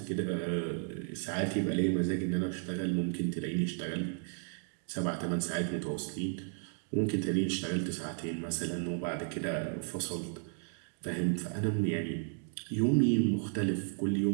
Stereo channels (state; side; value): silent; left; 55 dB below the other